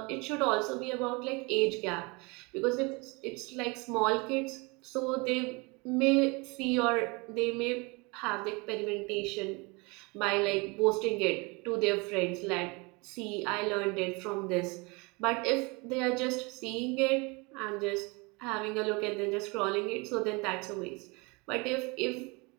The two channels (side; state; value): left; quieter; 27.7 dB